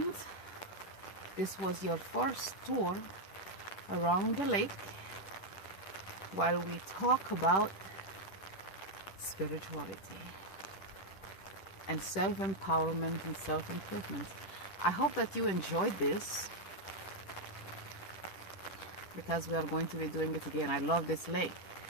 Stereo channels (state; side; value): late; right; 10 ms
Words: this was your first tour around the lake while we talk about spirituality and self-empowerment and self-improvement. I hope that you enjoyed this, because we are going to be doing it again. I love this lake.